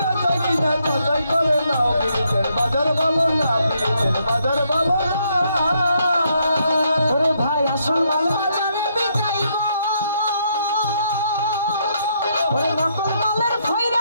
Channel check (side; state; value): both; inverted; correlation -0.74